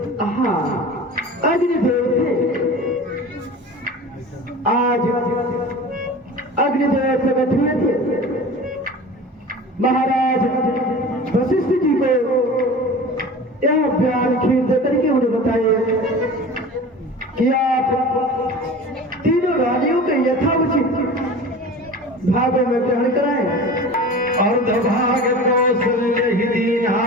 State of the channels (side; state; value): both; normal; correlation 0.36